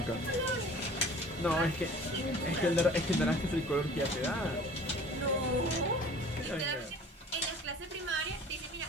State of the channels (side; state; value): both; normal; correlation 0.47